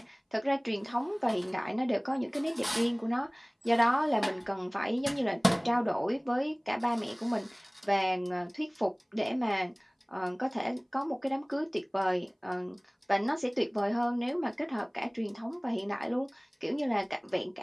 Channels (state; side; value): identical; both; correlation 1.00